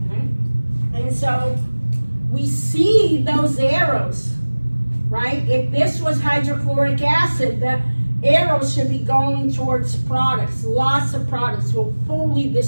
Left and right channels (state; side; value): inverted; both; correlation -1.00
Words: okay? And so we see those arrows, right? If this was hydrochloric acid, the arrows should be going towards products. Lots of products will fully